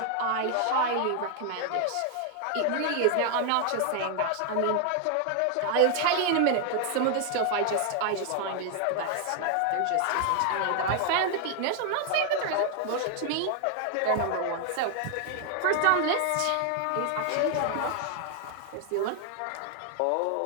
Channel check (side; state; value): both; different; correlation 0.00